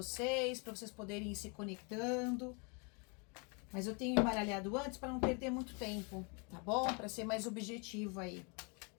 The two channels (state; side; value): quieter; right; 33.7 dB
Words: para vocês poderem ir se conectando. Mas eu tenho embaralhado antes para não perder muito tempo, tá bom? Para ser mais objetivo aí.